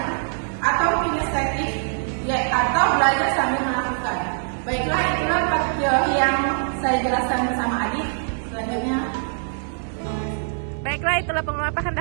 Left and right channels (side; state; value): left; silent; digital silence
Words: atau kinestetik, atau belajar sambil melakukan. Baiklah, itulah 4 teori yang saya jelaskan bersama Adit. Selanjutnya. Baiklah, itulah pengelompokan